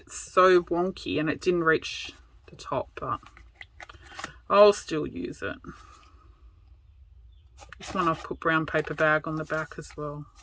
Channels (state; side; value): identical; both; correlation 1.00